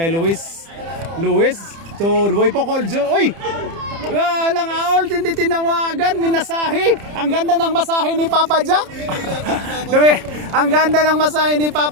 Luis. Luis to Boy Pocol. Uy! Walang aol, hindi tinawagan. Minasahe. Ang ganda ng masahe ni Papa Jack. Ang ganda ng masahe ni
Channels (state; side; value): late; left; 30 ms